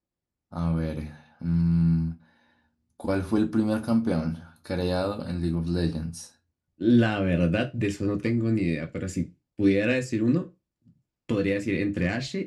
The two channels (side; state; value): both; identical; correlation 1.00